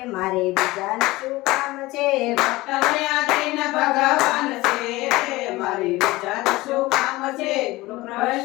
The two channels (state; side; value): quieter; right; 19.7 dB